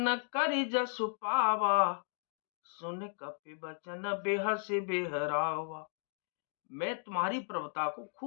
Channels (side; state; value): right; silent; digital silence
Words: कर जसु पावा, सुन कपि बचन बेहस बेहरावा। मैं तुम्हारी प्रभुता को